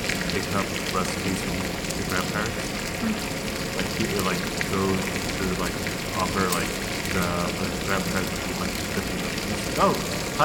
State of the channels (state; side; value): identical; both; correlation 1.00